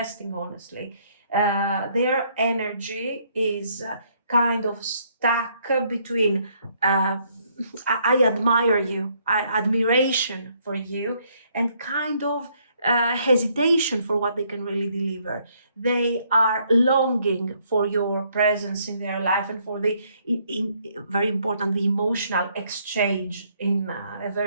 honestly. Their energy is kind of stuck between I admire you, admiration for you, and kind of hesitation for what they can really deliver. They are longing for your presence in their life and for very important, the emotional exchange in a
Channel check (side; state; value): both; inverted; correlation -0.69